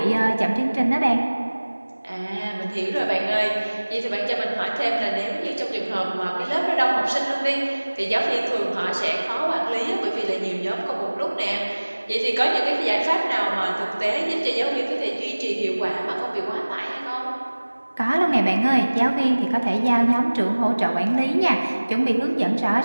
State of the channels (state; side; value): inverted; both; correlation -1.00